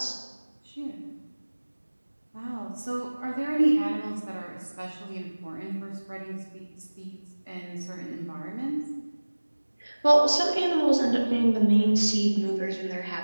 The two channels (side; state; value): both; inverted; correlation -1.00